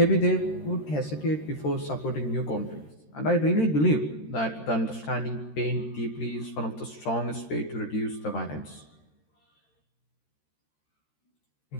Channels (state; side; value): late; right; 13 ms